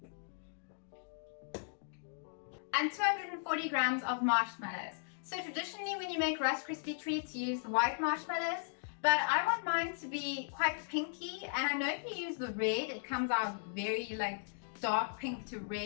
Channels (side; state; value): right; silent; digital silence